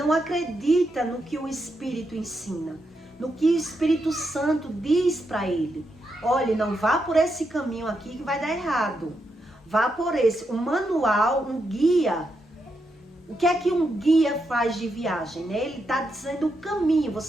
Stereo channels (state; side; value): normal; both; correlation 0.83